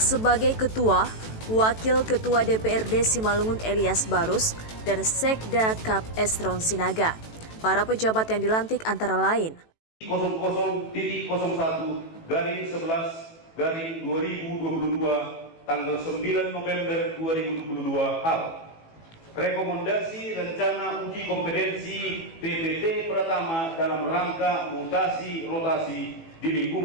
Ketua, Wakil Ketua DPRD Simalungun Elias Barus, dan Sekda Kap Estron Sinaga. Para pejabat yang dilantik antara lain 00.11/2022 tanggal 9 November 2022 hal. Rekomendasi rencana uji kompetensi PPT Pratama dalam rangka mutasi rotasi di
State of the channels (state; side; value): late; right; 18 ms